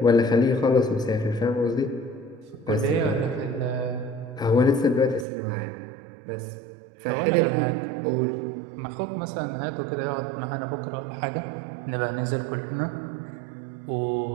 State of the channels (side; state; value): left; drops out; at 5.2 s